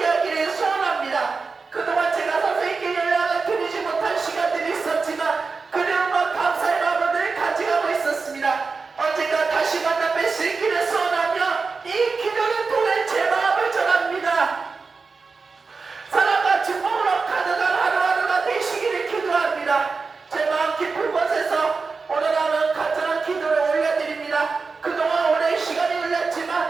소원합니다. 그동안 제가 선생님께 연락을 드리지 못한 시간들이 있었지만 그리움과 감사의 마음을 가져가고 있었습니다. 언젠가 다시 만나 뵐 수 있기를 소원하며 이 기도를 통해 제 마음을 전합니다. 사랑과 축복으로 가득한 하루하루가 되시기를 기도합니다. 제 마음 깊은 곳에서 오늘 하루 간절한 기도를 올려드립니다. 그동안 오랜 시간이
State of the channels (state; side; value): quieter; left; 4.5 dB